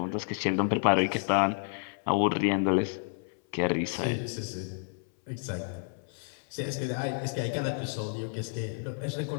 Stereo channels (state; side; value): silent; right; 58 dB below the other